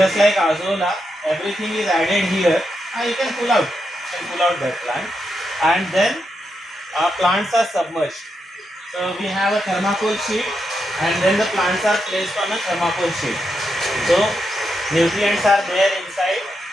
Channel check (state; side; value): normal; both; correlation 0.84